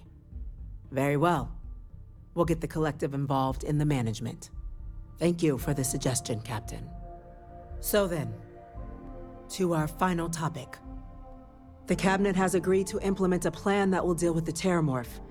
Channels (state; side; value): identical; both; correlation 1.00